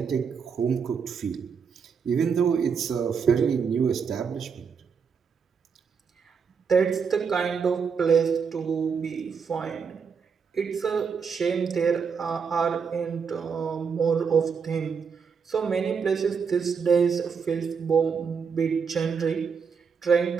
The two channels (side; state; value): left; quieter; 6.1 dB